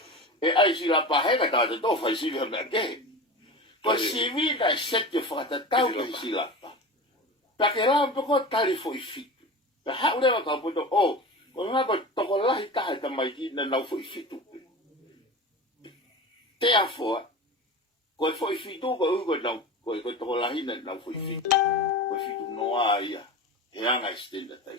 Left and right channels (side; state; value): both; normal; correlation 0.31